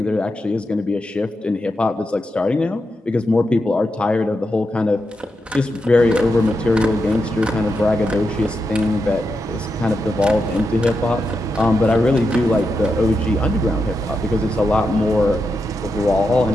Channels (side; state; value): both; normal; correlation 0.86